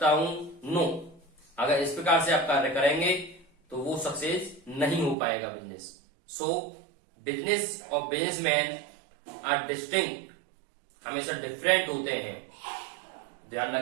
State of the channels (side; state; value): left; drops out; at 5.2 s